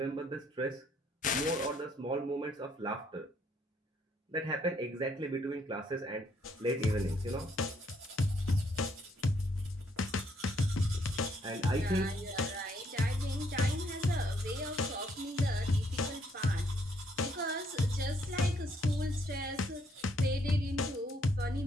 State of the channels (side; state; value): both; normal; correlation 0.69